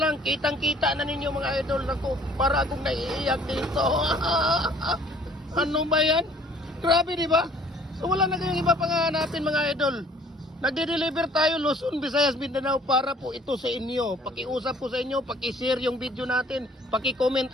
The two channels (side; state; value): both; normal; correlation 0.55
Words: kitang-kita na ninyo mga idol. Ako, para akong naiiyak dito. Ano ba yan? Grabe, di ba? So wala na kayong iba pang hanapin mga idol. Nagde-deliver tayo Luzon, Visayas, Mindanao para po ito sa inyo. Pakiusap po sa inyo, paki-share yung video natin, paki-comment